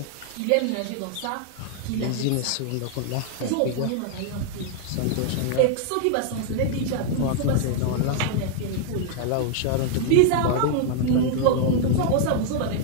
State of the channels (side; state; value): both; different; correlation 0.00